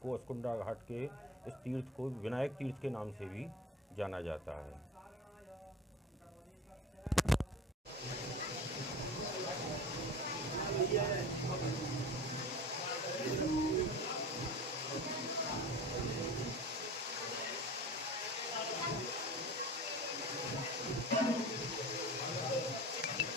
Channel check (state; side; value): normal; both; correlation 0.34